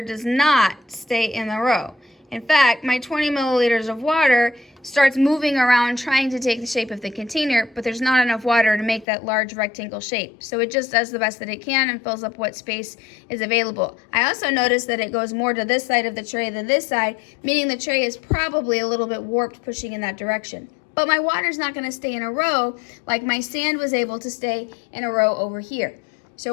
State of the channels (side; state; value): right; drops out; at 9.1 s